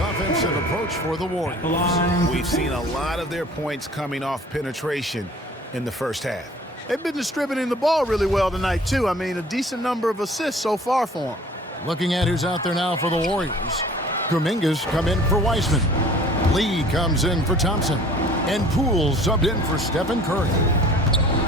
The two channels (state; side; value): normal; both; correlation 0.49